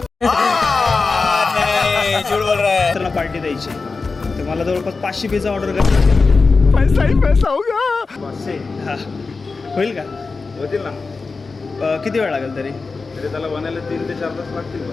पार्टी द्यायची तर मला जवळपास 500 पिझ्झा ऑर्डर करायचा. पैसा ही पैसा होगा. 500 हा होईल का? होतील ना. किती वेळ लागेल तरी? तरी त्याला बनायला 3 ते 4 तास लागतील.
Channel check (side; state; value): right; quieter; 4.2 dB